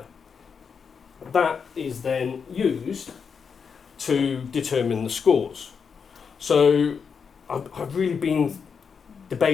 That is then used to determine the scores. So I've really been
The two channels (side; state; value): right; quieter; 6.1 dB